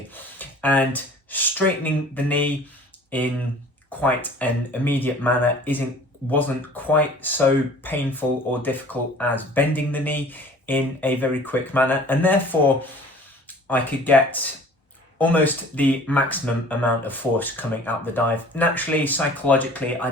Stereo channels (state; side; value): normal; both; correlation 0.48